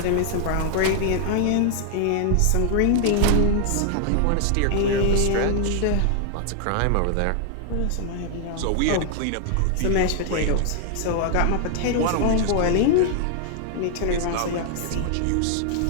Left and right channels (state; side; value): different; both; correlation 0.00